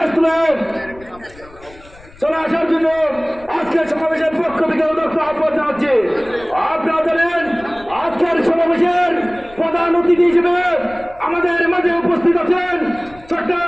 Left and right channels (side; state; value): left; noise; rumble, 23 dB below the sound